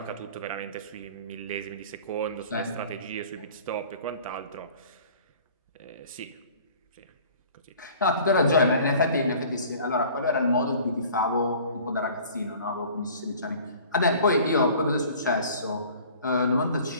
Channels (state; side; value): inverted; both; correlation -0.48